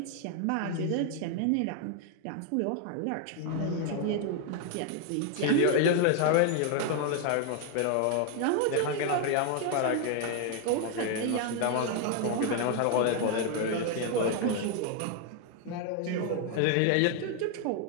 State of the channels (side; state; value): both; different; correlation 0.01